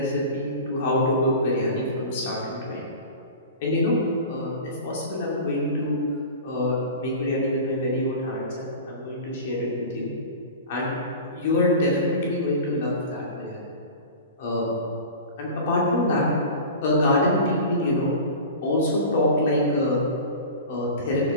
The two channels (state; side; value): inverted; both; correlation -0.34